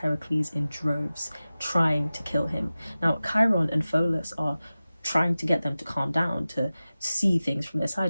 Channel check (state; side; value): inverted; both; correlation -0.96